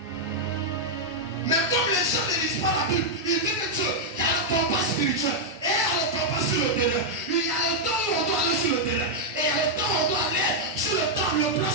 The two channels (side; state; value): both; normal; correlation -0.03